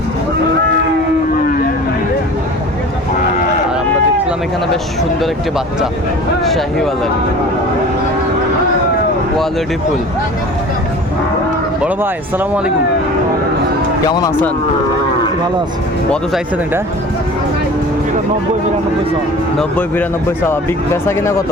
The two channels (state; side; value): normal; both; correlation 0.41